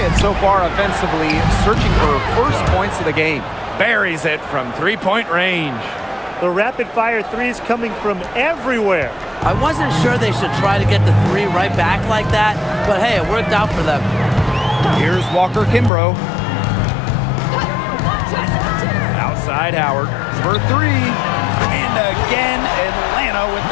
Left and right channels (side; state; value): right; drops out; at 15.9 s